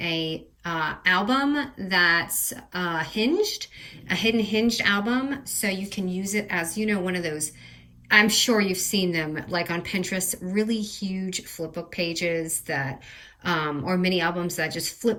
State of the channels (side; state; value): both; identical; correlation 1.00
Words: album that's hinged, a hidden hinged album. So you can use it as, one of those, I'm sure you've seen them like on Pinterest, really huge flipbook pages that or mini albums that just